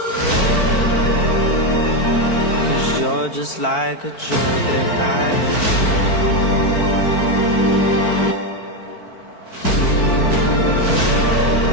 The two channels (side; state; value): right; late; 4.5 ms